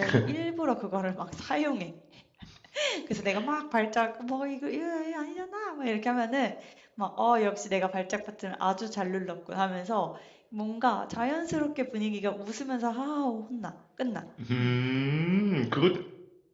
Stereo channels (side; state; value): both; identical; correlation 1.00